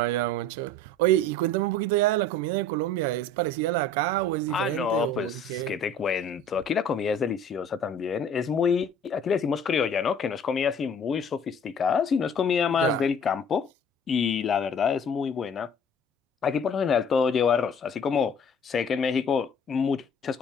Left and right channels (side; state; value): both; normal; correlation 0.48